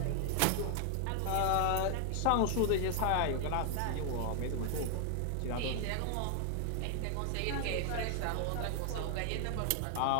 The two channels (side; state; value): both; different; correlation 0.00